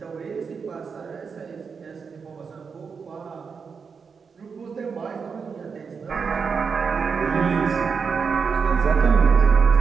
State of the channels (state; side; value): quieter; left; 5.7 dB